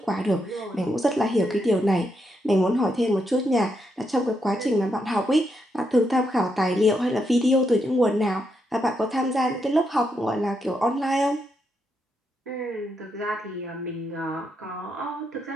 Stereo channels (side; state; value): both; normal; correlation 0.81